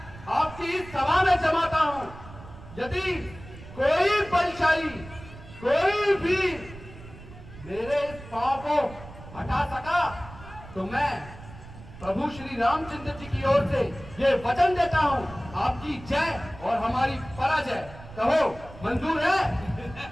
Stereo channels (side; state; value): right; noise; rumble, 17 dB below the sound